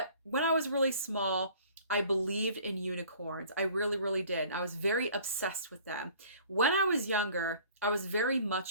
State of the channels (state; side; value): inverted; both; correlation -0.51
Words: when I was really small, I believed in unicorns. I really, really did. I was very obsessed with them. When I was younger, I was very